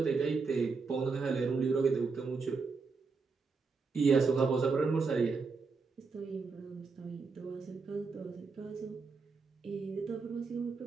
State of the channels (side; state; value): left; quieter; 4.7 dB